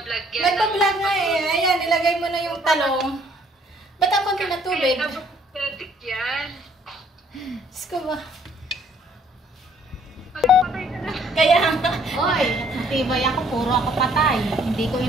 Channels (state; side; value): normal; both; correlation 0.62